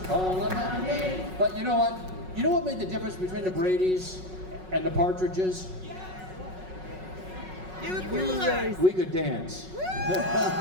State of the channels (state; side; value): late; left; 5.4 ms